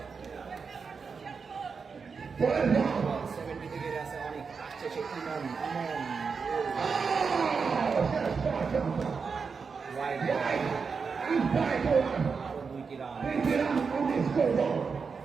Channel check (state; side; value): quieter; left; 5.4 dB